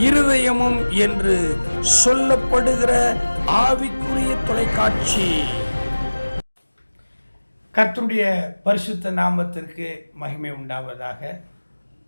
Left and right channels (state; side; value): inverted; both; correlation -1.00